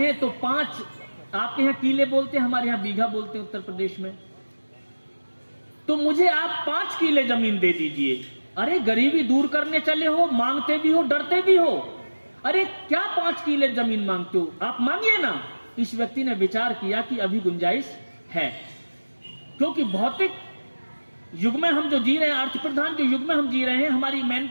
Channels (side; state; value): both; inverted; correlation -1.00